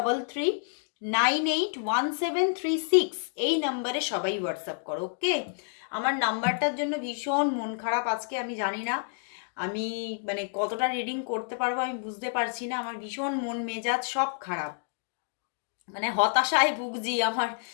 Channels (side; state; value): right; silent; digital silence